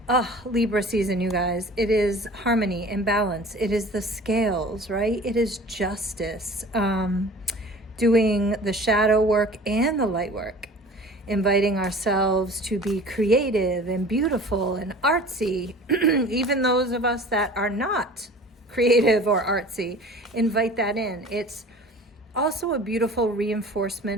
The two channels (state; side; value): normal; both; correlation 0.43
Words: Libra season, you guys. It is harmony and balance. It is the scales, right? It is justice. Doing the shadow work and the light work. Inviting ourselves to be creative and beautiful and artsy. Even those of us that are not creative or artsy, invite that in. It's also a beautiful